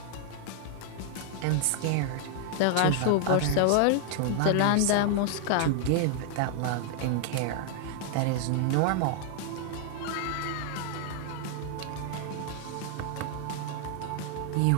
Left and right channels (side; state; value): both; different; correlation 0.00